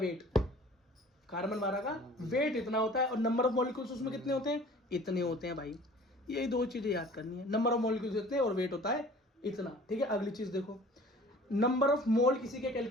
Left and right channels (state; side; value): normal; both; correlation 0.47